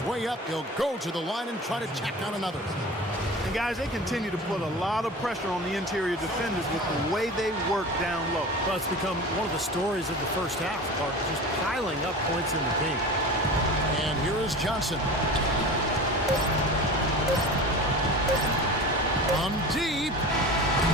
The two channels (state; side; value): normal; both; correlation 0.34